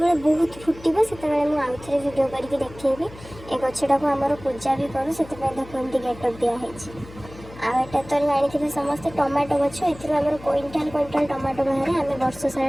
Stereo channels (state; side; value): noise; left; hum, 18 dB below the sound